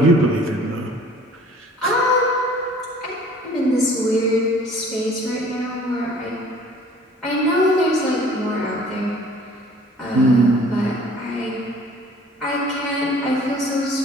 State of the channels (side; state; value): both; normal; correlation 0.52